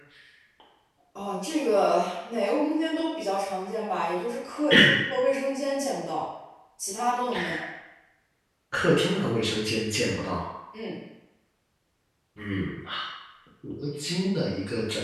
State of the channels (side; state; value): both; identical; correlation 1.00